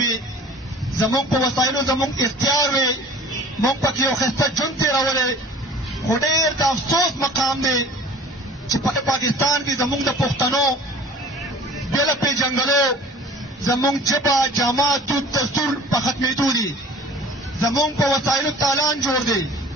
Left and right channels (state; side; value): normal; both; correlation 0.45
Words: زمونږ په وسایلو زمونږ اختیار وي، مونږ پکې یو ښایسته ژوند تېرولی. خو ډېر د افسوس مقام دی چې په پاکستان کې زمونږ د پښتنو بې له پېژنګلو زمونږ ژبه جامه دود دستور په ختمېدو دي، زمونږ په وسایلو تالان جوړ دی.